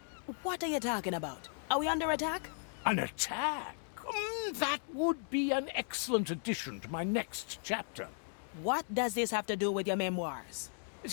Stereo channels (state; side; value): silent; right; 54 dB below the other